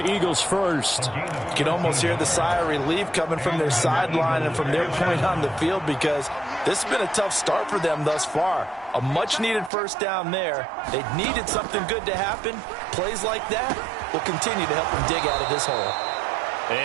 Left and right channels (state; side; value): drops out; left; at 9.7 s